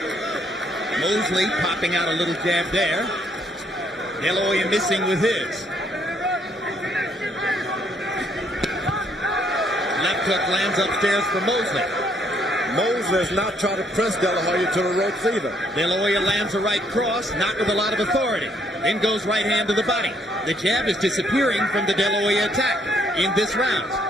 Mosley popping out a little jab there. De La Hoya missing with his. Left hook lands upstairs for Mosley. Mosley is not trying to press De La Hoya to the ropes either. De La Hoya lands a right cross, not with a lot of authority. Then goes right hand to the body. The jab is disappearing from the De La Hoya attack in this round.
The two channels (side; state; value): both; normal; correlation 0.69